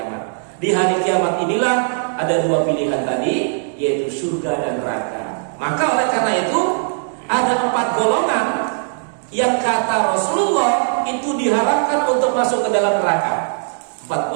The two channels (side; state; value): left; silent; digital silence